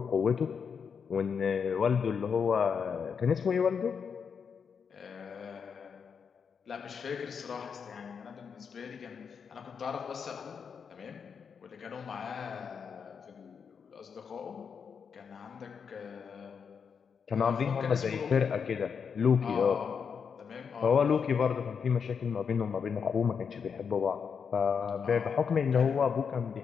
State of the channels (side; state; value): right; quieter; 6.4 dB